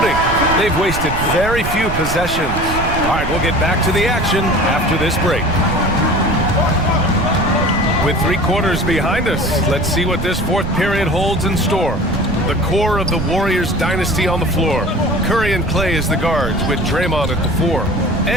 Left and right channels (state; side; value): noise; right; rumble, 5 dB below the sound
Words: They've wasted very few possessions. All right, we'll get back to the action after this break. With 3 quarters behind us, let's see what this fourth period holds in store. The core of the Warriors dynasty on the floor. Curry and Clay as the guards, with Draymond at the 4.